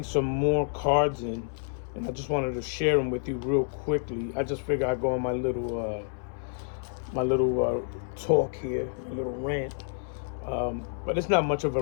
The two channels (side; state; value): right; silent; 59 dB below the other